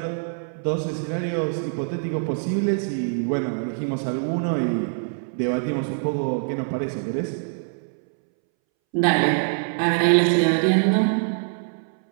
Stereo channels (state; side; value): silent; left; 63 dB below the other